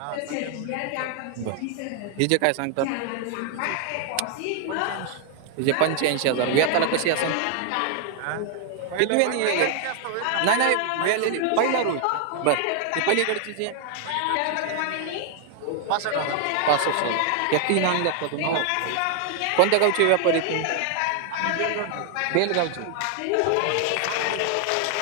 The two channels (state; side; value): different; both; correlation 0.00